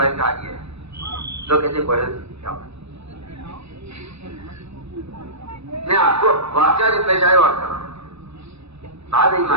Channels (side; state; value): left; late; 0.79 ms